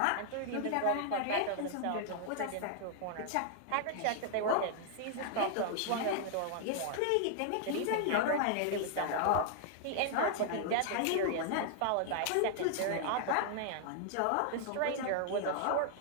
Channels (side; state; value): both; different; correlation 0.00